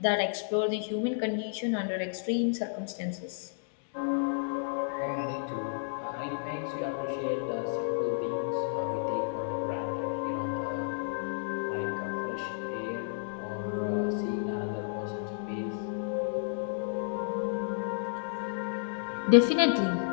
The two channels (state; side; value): silent; right; digital silence